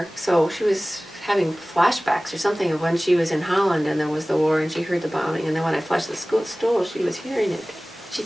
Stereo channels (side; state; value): both; normal; correlation 0.98